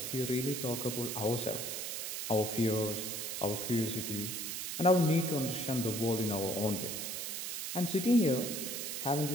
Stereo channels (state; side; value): noise; right; hiss, 4 dB below the sound